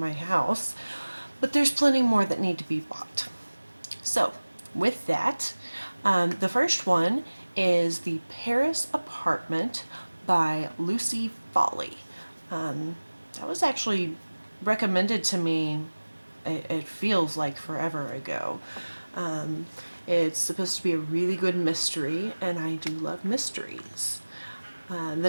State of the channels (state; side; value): inverted; both; correlation -1.00